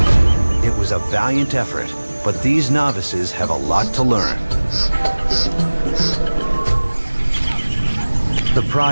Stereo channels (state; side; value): inverted; both; correlation -1.00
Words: It was a valiant effort, but these novices have a lot to learn. The